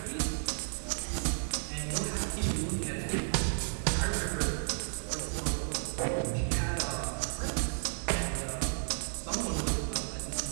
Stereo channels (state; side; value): silent; left; digital silence